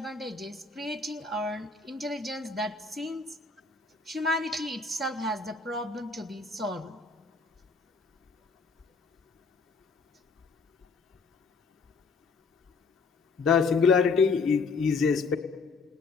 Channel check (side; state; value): right; quieter; 4.4 dB